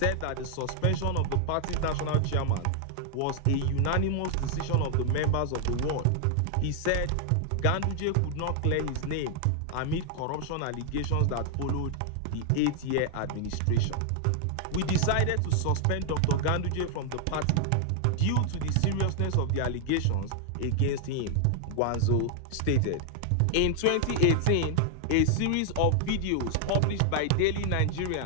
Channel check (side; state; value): both; different; correlation 0.00